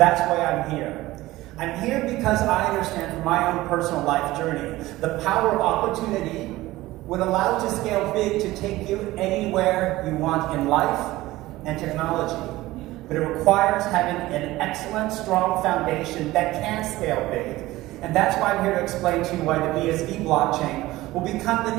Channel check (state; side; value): quieter; left; 17.8 dB